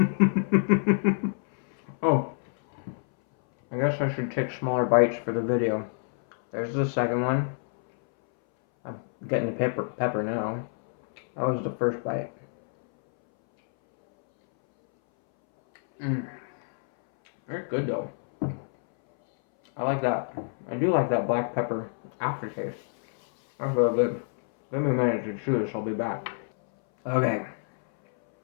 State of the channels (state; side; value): silent; right; 60 dB below the other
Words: Oh, I guess I should take smaller bites for the video. There's the second one. I'm getting the pepper now. That was the first bite. Very good though. I like that. I do like that black pepper aftertaste. That's real good. Let me manage to chew this, I'll be back. Okay.